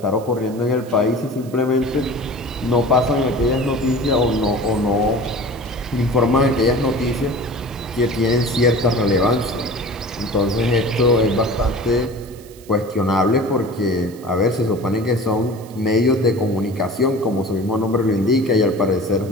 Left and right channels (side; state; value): right; noise; hiss, 23 dB below the sound